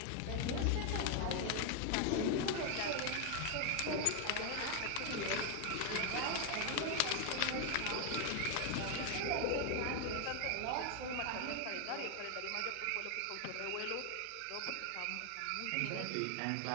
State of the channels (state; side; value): different; both; correlation 0.01